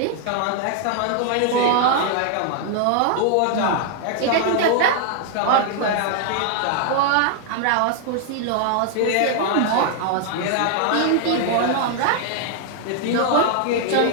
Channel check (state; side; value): different; both; correlation 0.00